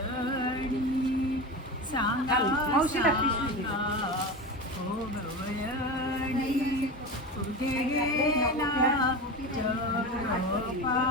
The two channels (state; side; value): normal; both; correlation 0.24